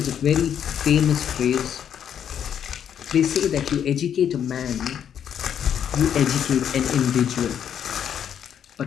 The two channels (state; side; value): quieter; right; 8.9 dB